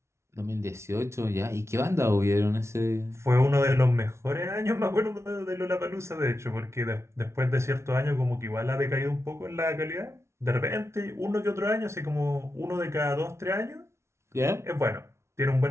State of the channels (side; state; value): left; late; 0.13 ms